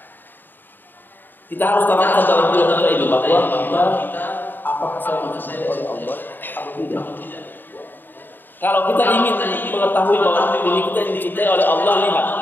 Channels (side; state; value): right; late; 0.092 ms